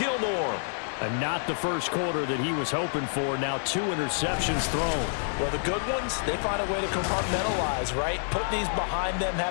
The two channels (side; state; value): right; silent; digital silence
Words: And not the first quarter that he was hoping for. Now 2 interceptions thrown. Well, the good ones, they find a way to compartmentalize, right? Put these behind them,